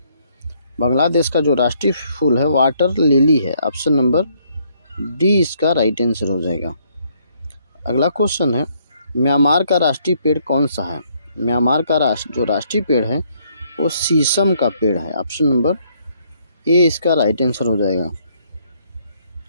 बांग्लादेश का जो राष्ट्रीय फूल है वाटर लिली है। ऑप्शन नंबर डी इसका राइट आंसर हो जाएगा। अगला क्वेश्चन है, म्यांमार का राष्ट्रीय पेड़ कौन सा है? म्यांमार का जो राष्ट्रीय पेड़ है वो शीशम का पेड़ है। ऑप्शन नंबर ए इसका राइट आंसर हो जाएगा।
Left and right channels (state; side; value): inverted; both; correlation -0.69